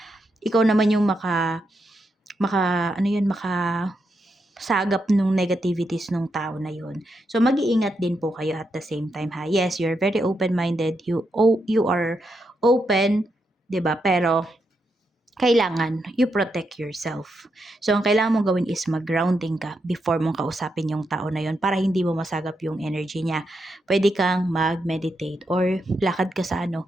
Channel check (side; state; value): both; normal; correlation 0.83